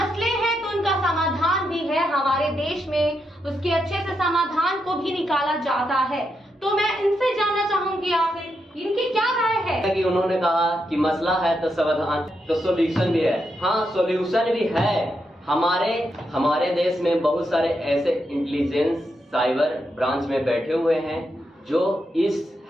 हैं तो उनका समाधान भी है हमारे देश में, उसके अच्छे से समाधान को भी निकाला जाता है। तो मैं इनसे जानना चाहूंगी आखिर इनकी क्या राय है। कि उन्होंने कहा कि मसला है तो समाधान, तो सॉल्यूशन भी है। हाँ, सॉल्यूशन भी है। हमारे देश में बहुत सारे ऐसे इंटेलिजेंस साइबर ब्रांच में बैठे हुए हैं जो इस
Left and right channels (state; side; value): normal; both; correlation 0.83